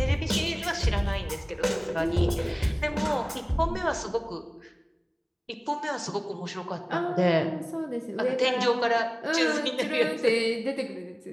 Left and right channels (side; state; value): both; identical; correlation 1.00